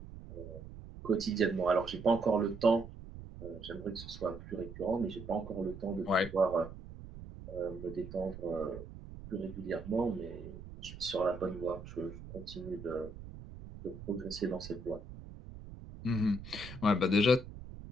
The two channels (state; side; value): noise; right; rumble, 13 dB below the sound